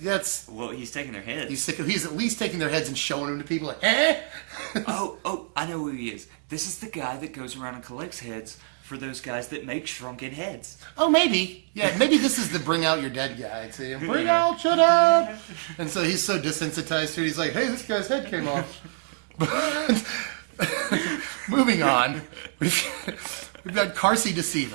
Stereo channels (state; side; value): silent; left; digital silence